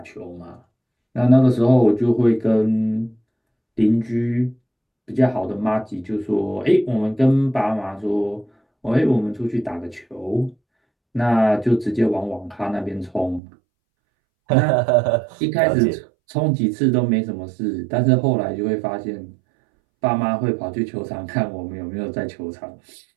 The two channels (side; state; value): left; drops out; at 13.4 s